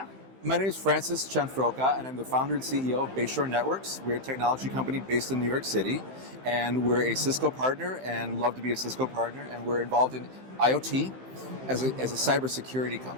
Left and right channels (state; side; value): late; left; 15 ms